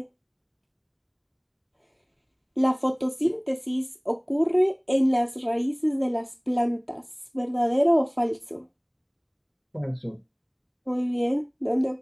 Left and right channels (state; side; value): identical; both; correlation 1.00